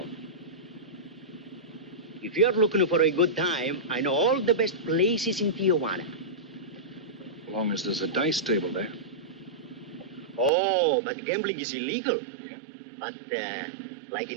If you're looking for a good time, I know all the best places in Tijuana. As long as there's a dice table there. Oh, but gambling is illegal. Yeah. But, like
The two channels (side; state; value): left; drops out; at 10.5 s